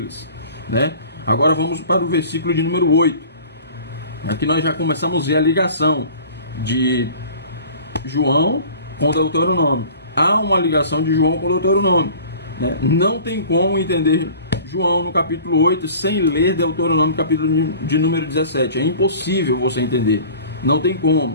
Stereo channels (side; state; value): both; inverted; correlation -0.45